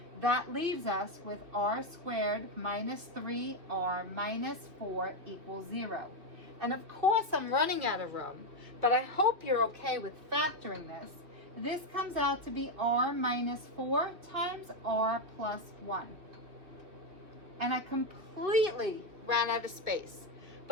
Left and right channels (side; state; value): left; late; 2.5 ms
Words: That leaves us with r squared minus 3r minus 4 equals 0. And of course I'm running out of room, but I hope you're okay with factoring this. This comes out to be r minus 4 times r plus 1. And I completely ran out of space.